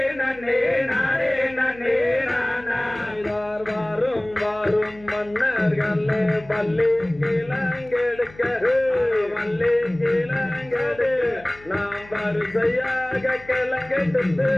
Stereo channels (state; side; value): noise; left; hum, 22 dB below the sound